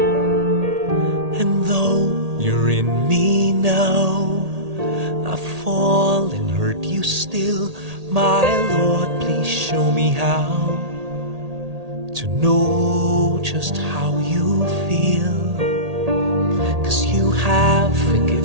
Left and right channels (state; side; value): late; left; 1.8 ms